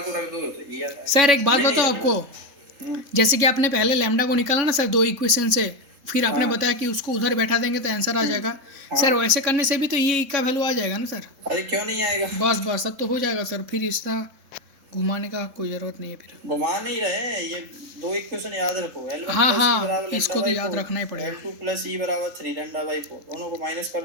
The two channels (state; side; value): late; left; 3.7 ms